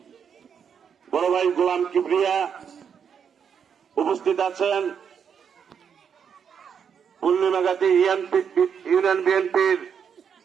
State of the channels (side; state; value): left; quieter; 7.3 dB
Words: বড় ভাই গোলাম কিবরিয়া, উপস্থিত আছেন পূর্ণিমাগাতি ইউনিয়ন বিএনপির